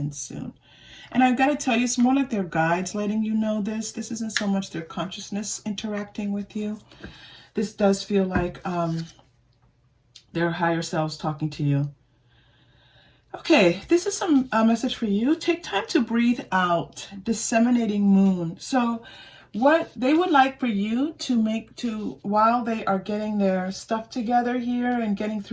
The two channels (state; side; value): identical; both; correlation 1.00